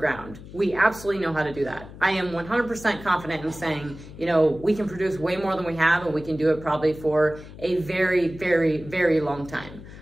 We absolutely know how to do that. I am 100% confident in saying, we can produce way more than we have, and we can do it probably for a very, very, very long time.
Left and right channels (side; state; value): left; noise; hum, 16 dB below the sound